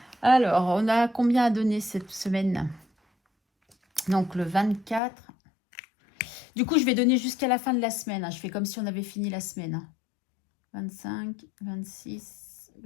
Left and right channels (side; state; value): right; drops out; at 5.0 s